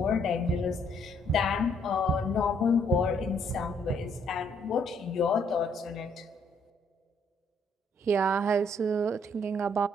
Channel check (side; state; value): both; normal; correlation 0.67